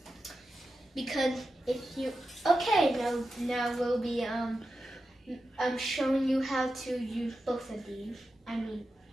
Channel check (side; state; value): both; normal; correlation 0.91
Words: Because if you now we'll be showing you how to use both of these.